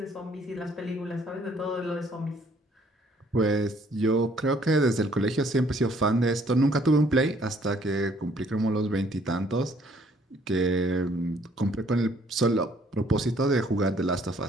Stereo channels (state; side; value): normal; both; correlation 0.62